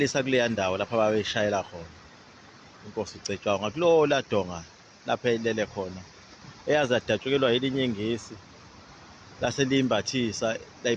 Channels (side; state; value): both; identical; correlation 1.00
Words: kuleya ndawo lapho babeyishayela khona inkosi Ucetshwayo ngakulowo ladonga lapho eyilele khona, eyazi yadatshukelwa yelinye ingisi lase liyimbathisa